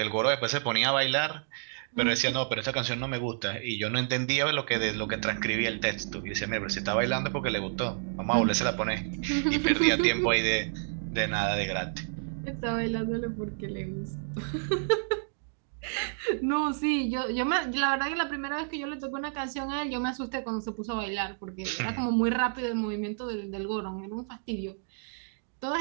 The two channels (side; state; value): left; silent; digital silence